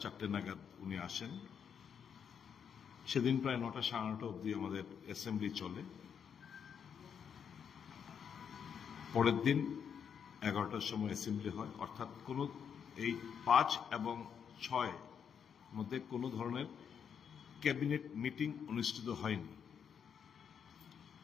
4টে নাগাদ উনি আসেন। সেদিন প্রায় 9টা সাড়ে 9টা অবধি আমাদের অ্যাসেম্বলি চলে। পরের দিন 11টার সময় অ্যাসেম্বলি হয়, অর্থাৎ কোনো এই 5 এবং 6 মধ্যে কোনো ধরনের ক্যাবিনেট মিটিং অনুষ্ঠিত হয়নি।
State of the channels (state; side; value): quieter; right; 7.5 dB